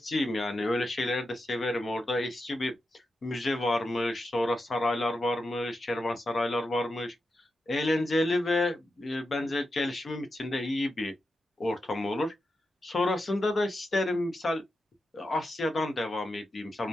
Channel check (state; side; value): normal; both; correlation 0.89